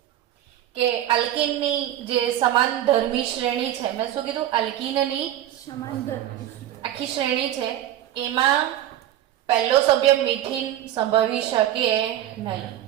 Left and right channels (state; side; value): quieter; left; 12.5 dB